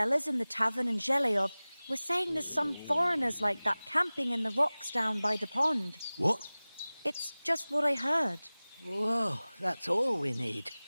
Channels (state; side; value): inverted; both; correlation -0.99